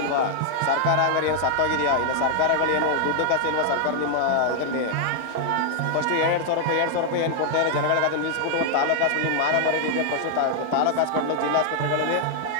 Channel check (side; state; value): both; different; correlation 0.00